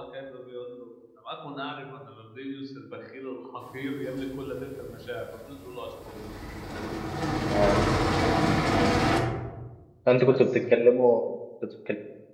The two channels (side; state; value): both; identical; correlation 1.00